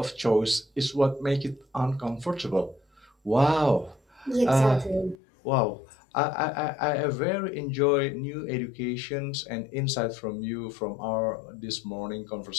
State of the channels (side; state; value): right; drops out; at 5.2 s